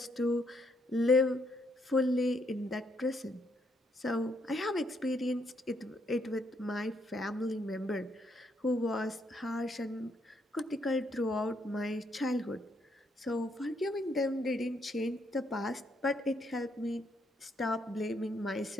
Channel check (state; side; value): normal; both; correlation 0.74